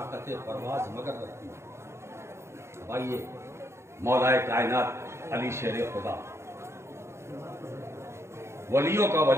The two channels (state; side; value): late; left; 0.13 ms